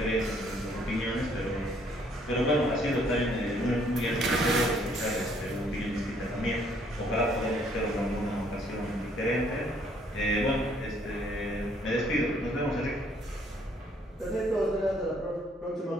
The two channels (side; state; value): both; normal; correlation 0.65